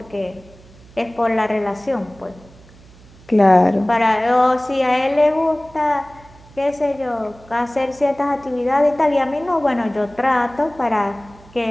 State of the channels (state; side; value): noise; right; hum, 24 dB below the sound